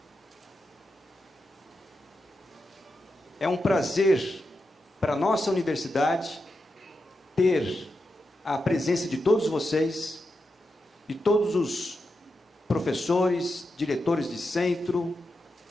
É um prazer para a nossa universidade ter a presença de todos vocês, de todos os professores, diretores de centro,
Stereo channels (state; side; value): normal; both; correlation 0.88